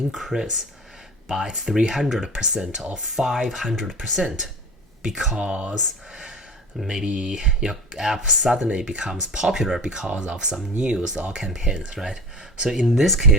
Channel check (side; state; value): both; normal; correlation 0.36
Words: by 300% or 500% because maybe your app suddenly becomes popular because of some news or campaigns, right? So in this